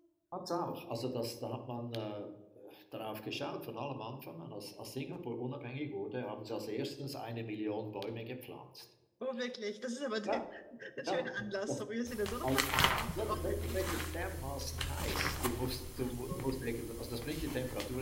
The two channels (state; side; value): identical; both; correlation 1.00